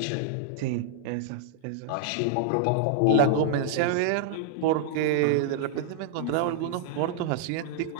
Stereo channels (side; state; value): both; different; correlation -0.01